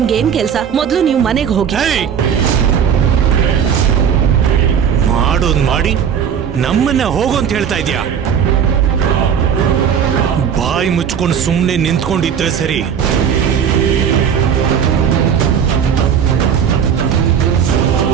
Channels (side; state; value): left; quieter; 7.9 dB